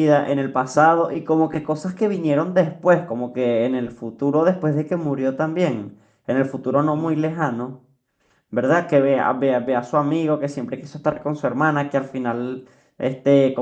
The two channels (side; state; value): both; identical; correlation 1.00